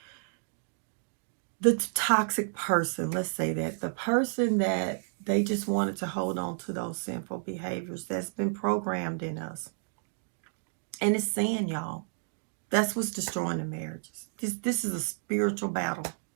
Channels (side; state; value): left; silent; digital silence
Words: the toxic person, let's say that, the person that they just wanted to hold on to those sinful behaviors that's been programmed in us. And it's sin, y'all. That's what's destroying the marriages. This is a spiritual battle.